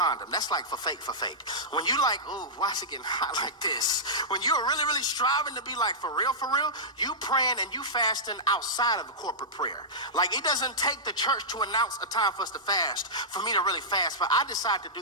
That's like for fake. When you like, ooh, why is it getting hot like this? When you're really striving to be like for real, you praying and you fasting outside of the corporate prayer. Like, it doesn't take the church to announce a time for us to fast for me to really fast, but I decide to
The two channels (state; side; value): normal; both; correlation -0.13